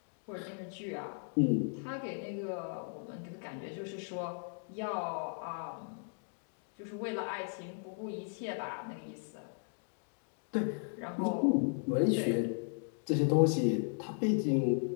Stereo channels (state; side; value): silent; right; 54 dB below the other